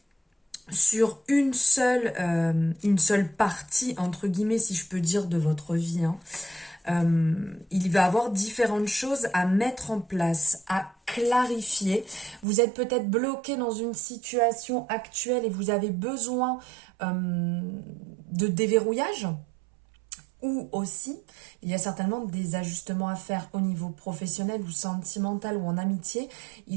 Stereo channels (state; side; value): drops out; left; at 12.5 s